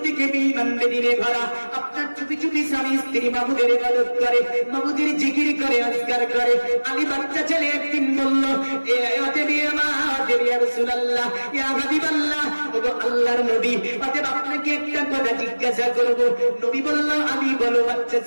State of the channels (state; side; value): inverted; both; correlation -1.00